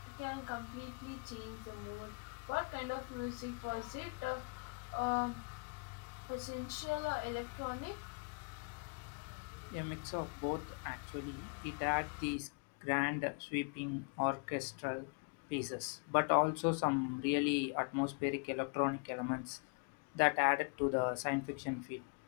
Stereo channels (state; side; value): quieter; right; 33.5 dB